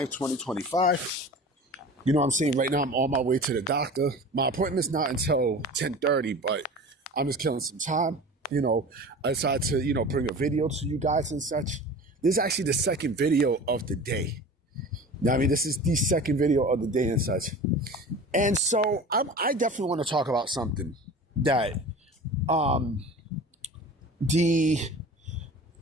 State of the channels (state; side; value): normal; both; correlation 0.37